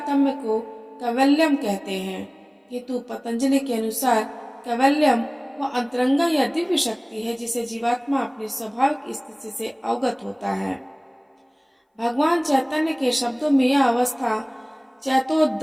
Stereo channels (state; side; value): identical; both; correlation 1.00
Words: को कैवल्यम कहते हैं, किंतु पतंजलि के अनुसार कैवल्यम वह अंतरंगा या दिव्य शक्ति है जिसे जीवात्मा अपनी स्वाभाविक स्थिति से अवगत होता है। भगवान चैतन्य के शब्दों में यह अवस्था